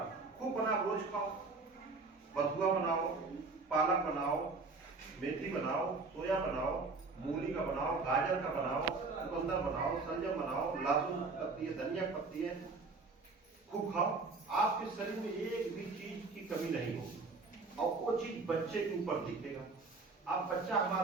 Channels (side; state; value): left; quieter; 3.9 dB